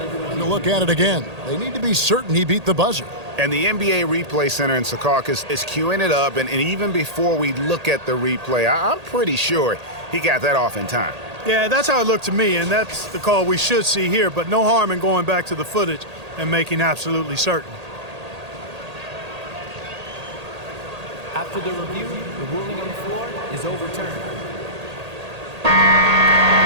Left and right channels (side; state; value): left; late; 1.8 ms